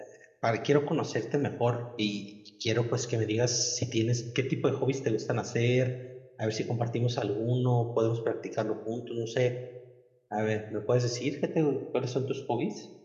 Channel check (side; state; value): both; identical; correlation 1.00